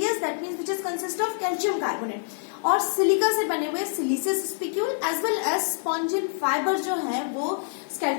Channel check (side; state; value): right; silent; 61 dB below the other